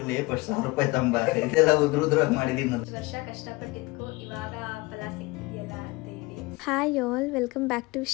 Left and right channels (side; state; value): right; quieter; 23.0 dB